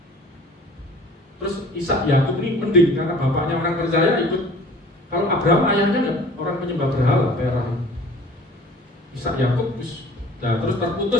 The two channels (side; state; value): both; normal; correlation 0.48